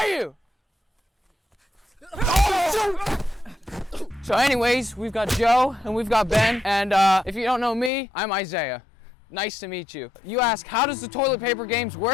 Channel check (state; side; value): drops out; right; at 7.9 s